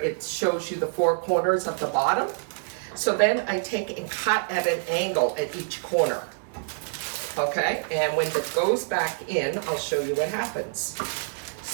shows you the four corners of the bottom. So then I take and cut at an angle at each corner, okay? And when it goes back in, I'll show you what happens.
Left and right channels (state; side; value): silent; left; 61 dB below the other